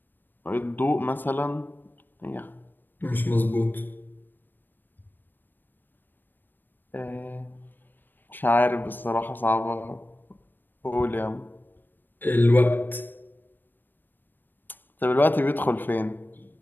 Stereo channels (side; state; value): right; late; 0.092 ms